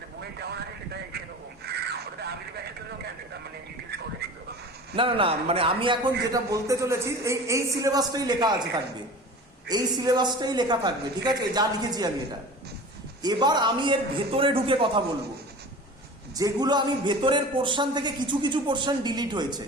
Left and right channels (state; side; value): normal; both; correlation 0.37